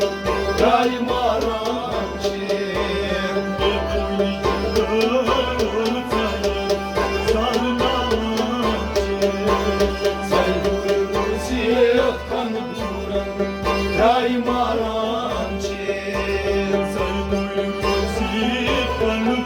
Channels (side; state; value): both; identical; correlation 1.00